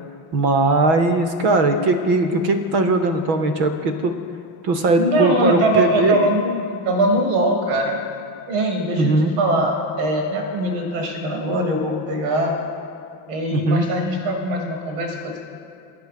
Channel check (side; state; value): left; late; 6.2 ms